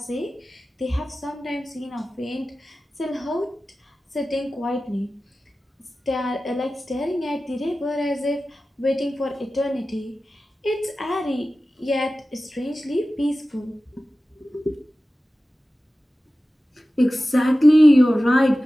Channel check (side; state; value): both; normal; correlation 0.95